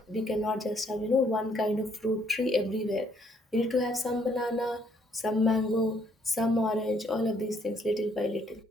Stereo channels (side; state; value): both; normal; correlation 0.67